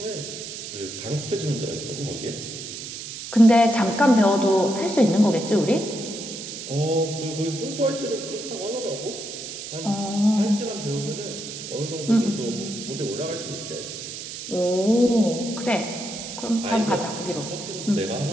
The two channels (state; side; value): noise; right; hiss, 9 dB below the sound